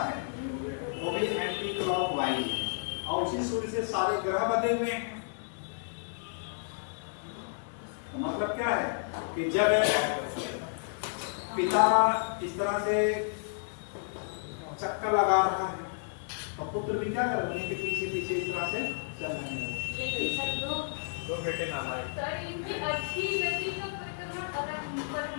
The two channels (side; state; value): right; silent; 57 dB below the other